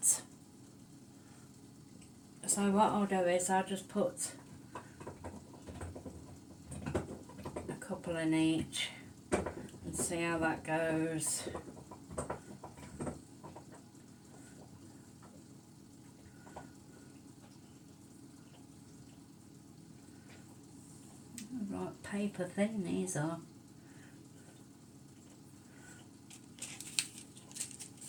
So what I'll do is I'll just put a couple in each and see how that goes. Right, paper thin these are.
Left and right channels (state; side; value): identical; both; correlation 1.00